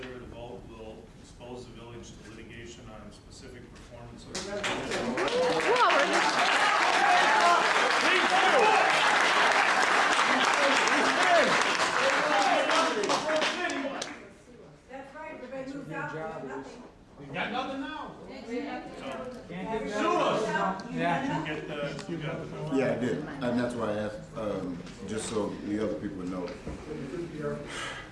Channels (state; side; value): identical; both; correlation 1.00